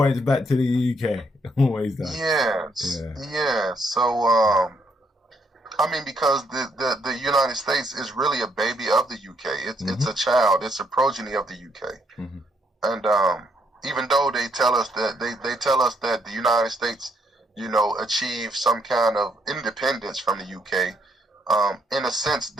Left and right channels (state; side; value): normal; both; correlation 0.72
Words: back to the UK. Always does. Yes. Yeah. So, because the United States is really a baby of the UK. It's a child. It's a progeny of the UK. And even though they tell us that the United States, achieved some kind of independence from the UK. In a sense,